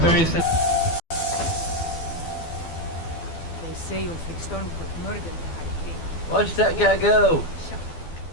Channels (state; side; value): late; right; 12 ms